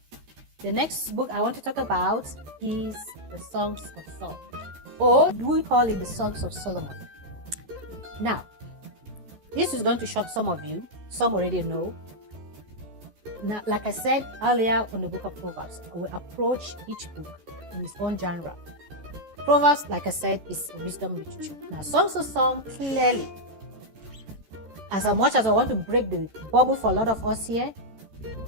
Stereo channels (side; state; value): left; late; 13 ms